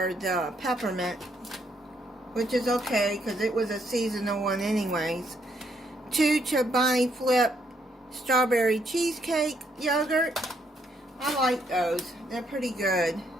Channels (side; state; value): both; normal; correlation 0.73